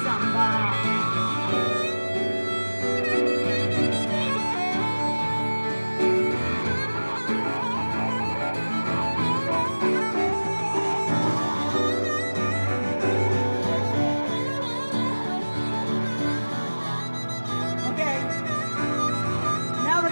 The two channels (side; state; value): both; inverted; correlation -1.00